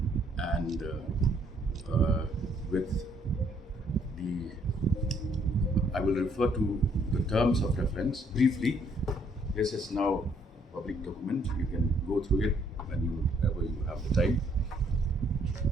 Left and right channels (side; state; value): both; normal; correlation 0.67